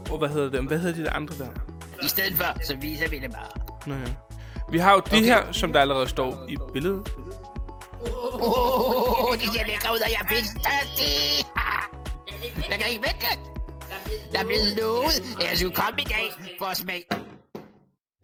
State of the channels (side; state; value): both; identical; correlation 1.00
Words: Og hvad hedder det? Hvad hedder de der andre der? I stedet for, så viser vi det bare. Nå ja. Vi har jo det her, som der allerede står i billedet. Det ser lækker ud, og jeg er pissestørstig. Jeg kan ikke vente. Jeg er blevet lovet, at jeg skulle komme i dag for at smage.